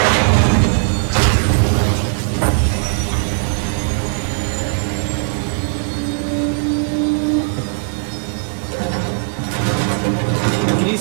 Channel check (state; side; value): silent; left; digital silence